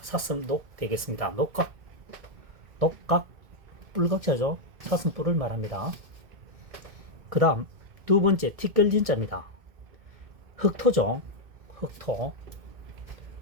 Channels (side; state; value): left; late; 2.1 ms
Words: 되겠습니다. 녹각, 뿔각자죠. 사슴뿔을 말합니다. 그 다음 두 번째 티끌진자입니다. 흑토죠.